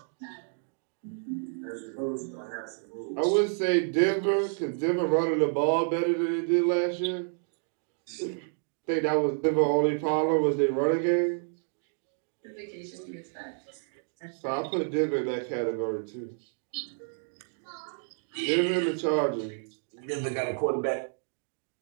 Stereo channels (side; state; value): left; silent; digital silence